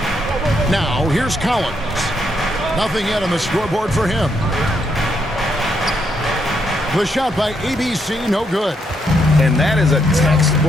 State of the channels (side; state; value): both; normal; correlation 0.77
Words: Now, here's Collins. Nothing yet on the scoreboard for him. The shot by ABC, no good. And that is a